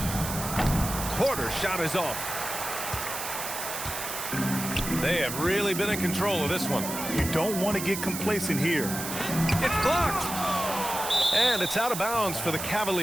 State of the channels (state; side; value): noise; right; hiss, 6 dB below the sound